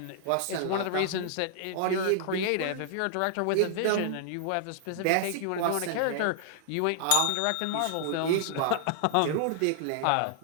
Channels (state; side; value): different; both; correlation -0.01